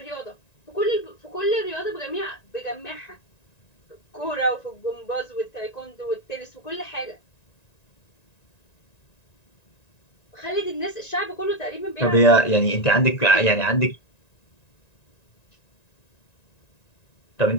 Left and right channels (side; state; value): right; late; 1.9 ms